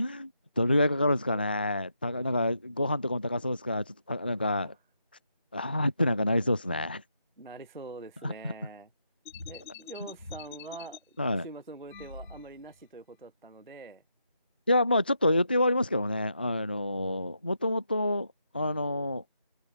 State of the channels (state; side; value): inverted; both; correlation -0.81